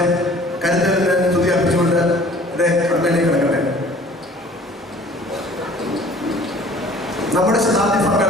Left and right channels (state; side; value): normal; both; correlation 0.50